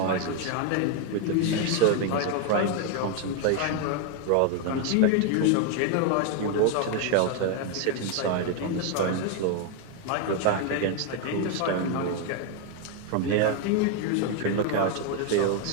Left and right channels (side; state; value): both; different; correlation 0.01